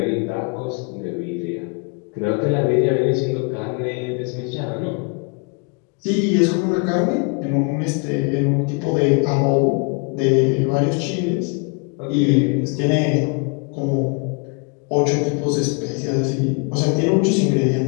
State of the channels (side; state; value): right; quieter; 33.9 dB